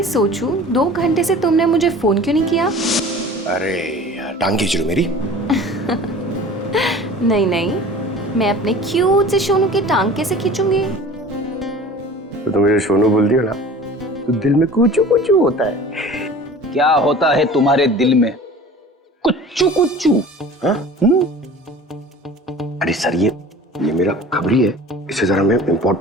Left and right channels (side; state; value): both; normal; correlation 0.42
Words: सोचूं 2 घंटे से तुमने मुझे फोन क्यों नहीं किया? अरे यार टांग खींच रही मेरी। नहीं नहीं, मैं अपने क्यूट से सोनू की टांग कैसे खींचूंगी? तो तुम मुझे सोनू बोलती हो ना, तो दिल में कुचू कुचू होता है। क्या होता है तुम्हारे दिल में? कुच्चू कुच्चू। हाँ? अरे सर ये मेरा खबरी है, इससे जरा मैं